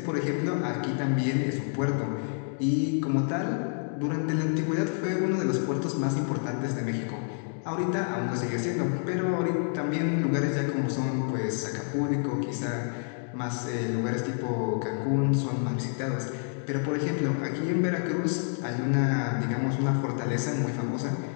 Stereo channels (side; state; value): right; silent; 59 dB below the other